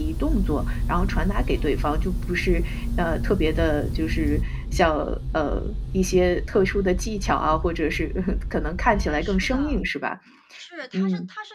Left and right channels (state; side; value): identical; both; correlation 1.00